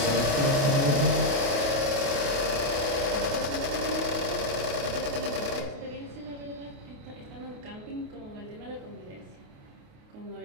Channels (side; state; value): left; late; 28 ms